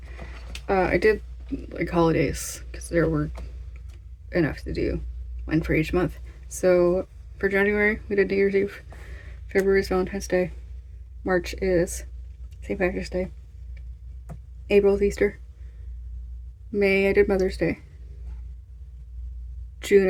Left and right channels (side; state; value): both; identical; correlation 1.00